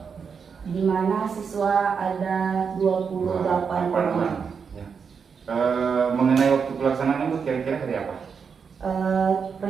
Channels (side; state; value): left; quieter; 6.1 dB